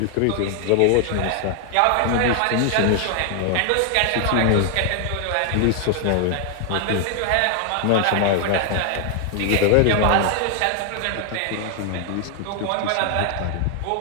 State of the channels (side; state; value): both; different; correlation 0.00